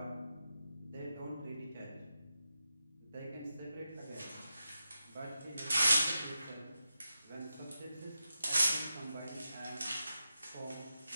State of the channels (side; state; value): both; inverted; correlation -0.88